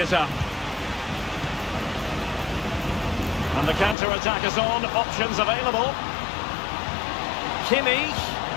up. And the counter-attack is on. Options available. Kimmich.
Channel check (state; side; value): drops out; right; at 4.0 s